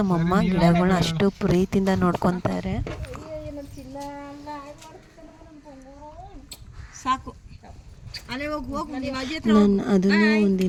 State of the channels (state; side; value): identical; both; correlation 1.00